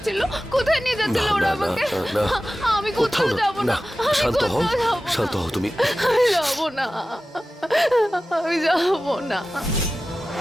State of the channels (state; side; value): normal; both; correlation 0.95